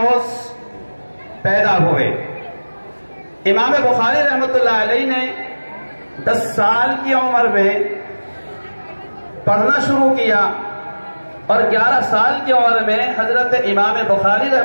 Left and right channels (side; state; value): both; inverted; correlation -1.00